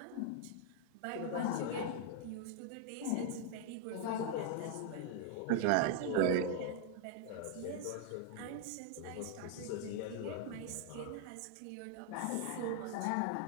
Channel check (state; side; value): different; both; correlation 0.00